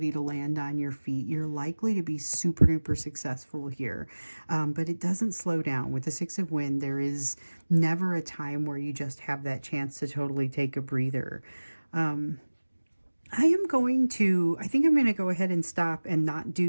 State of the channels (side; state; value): both; inverted; correlation -1.00